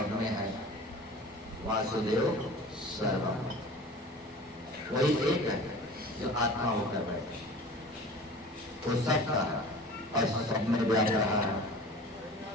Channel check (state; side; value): normal; both; correlation 0.40